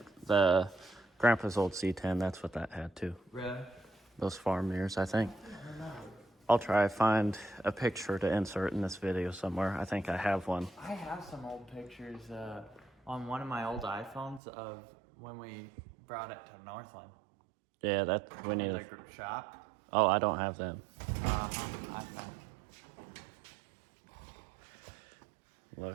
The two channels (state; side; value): drops out; left; at 14.4 s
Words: the Grandpa's old C10, that's what that had too. Really? Those farm mirrors, I think. I don't know. I'll try to find a picture to insert in this video somewhere. I think I have one. I have some old pictures on one of my old iPhones of when we brought it to Northland. Yeah, that we need. The group shop. Oh, I don't have them. I know.